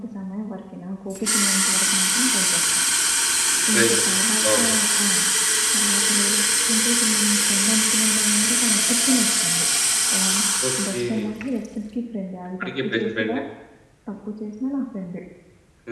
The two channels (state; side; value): identical; both; correlation 1.00